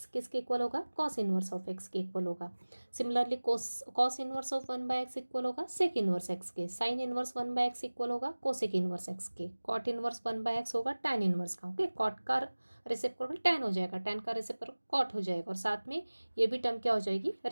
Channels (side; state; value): both; inverted; correlation -1.00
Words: किसके इक्वल होगा? कॉस इनवर्स ऑफ एक्स के इक्वल होगा। Similarly cos inverse of 1/x equal होगा सेक इनवर्स एक्स के। साइन इनवर्स 1/x इक्वल होगा कोसेक इनवर्स एक्स के। कॉट इनवर्स 1/x होगा टैन इनवर्स का। ओके, कॉट का रेसिप्रोकल टैन हो जाएगा, टैन का रेसिप्रोकल कॉट हो जाएगा, और साथ में ये भी टर्म क्या हो जाएगी?